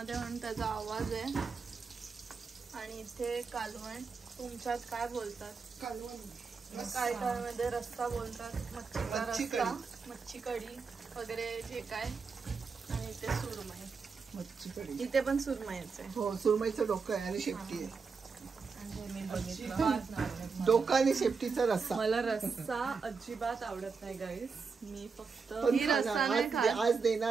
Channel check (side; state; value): left; quieter; 5.1 dB